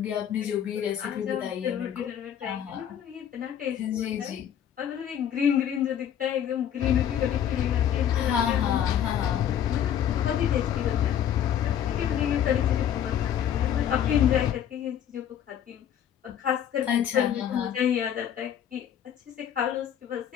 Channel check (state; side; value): quieter; right; 9.7 dB